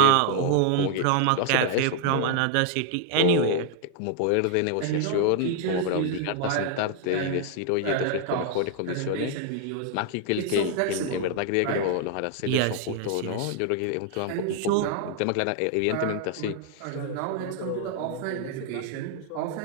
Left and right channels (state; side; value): different; both; correlation 0.00